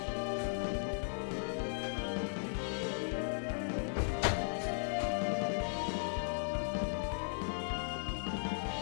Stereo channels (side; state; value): right; silent; digital silence